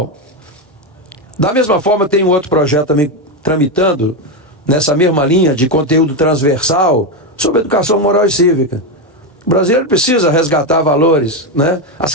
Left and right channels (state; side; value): normal; both; correlation 0.09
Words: Da mesma forma, tem um outro projeto também tramitando nessa mesma linha de conteúdo transversal sobre educação moral e cívica. O brasileiro precisa resgatar valores, né? As